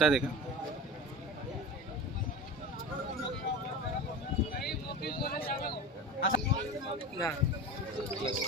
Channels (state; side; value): normal; both; correlation 0.30